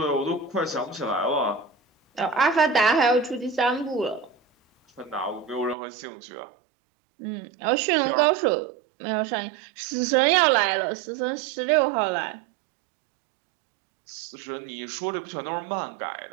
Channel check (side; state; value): left; drops out; at 5.8 s